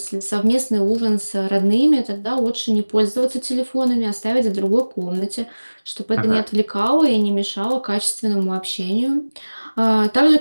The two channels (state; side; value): inverted; both; correlation -1.00